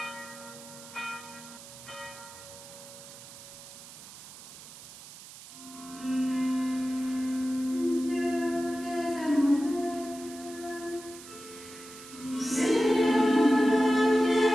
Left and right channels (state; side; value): noise; right; hiss, 16 dB below the sound